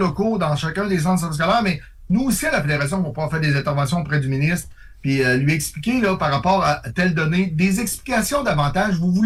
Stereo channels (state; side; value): identical; both; correlation 1.00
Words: dans chacun des centres de services scolaires, mais nous aussi, à la Fédération, on va pouvoir faire des interventions auprès du ministre, puis lui expliquer, là, par rapport à telle donnée, des explications davantage. Vous